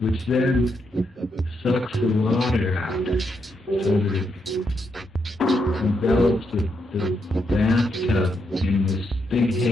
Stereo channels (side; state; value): both; normal; correlation 0.80